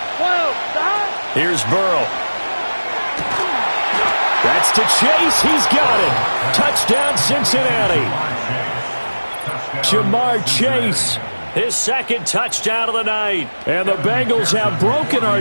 Here's Burrow. That's to Chase. He's got it. Touchdown, Cincinnati. Jamar Chase. His 2nd touchdown of the night. And the Bengals have broken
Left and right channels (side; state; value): both; inverted; correlation -1.00